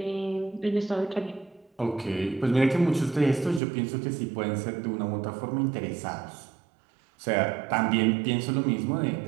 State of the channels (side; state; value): left; drops out; at 3.6 s